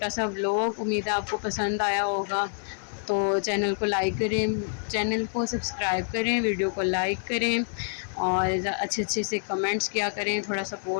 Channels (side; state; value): right; silent; digital silence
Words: सा व्लॉग, उम्मीद है आपको पसंद आया होगा। तो चैनल को लाइक करें, चैनल को सब्सक्राइब करें, वीडियो को लाइक करें और अच्छे से कमेंट्स किया करें, थोड़ा